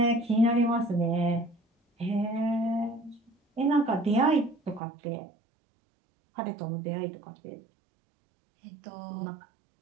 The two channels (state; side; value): drops out; left; at 4.8 s